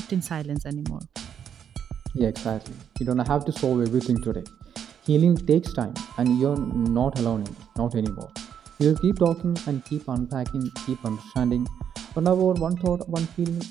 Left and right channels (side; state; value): left; quieter; 8.5 dB